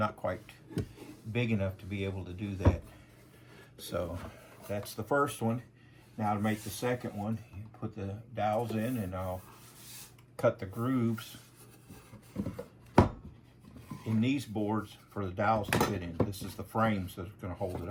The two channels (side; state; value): both; identical; correlation 1.00